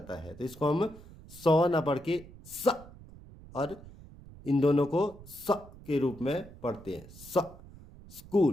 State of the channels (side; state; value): right; noise; rumble, 19 dB below the sound